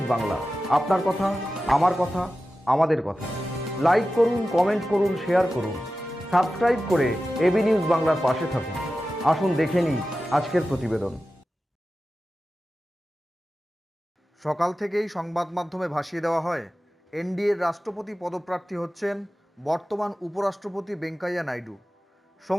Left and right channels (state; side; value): normal; both; correlation 0.94